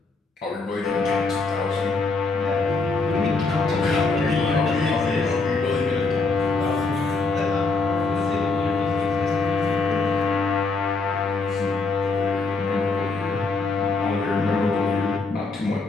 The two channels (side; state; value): right; quieter; 3.9 dB